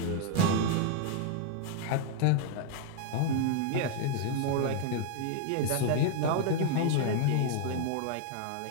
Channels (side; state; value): both; different; correlation 0.00